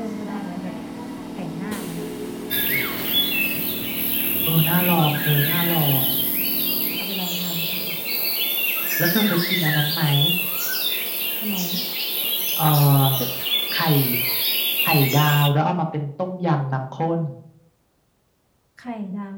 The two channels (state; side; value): identical; both; correlation 1.00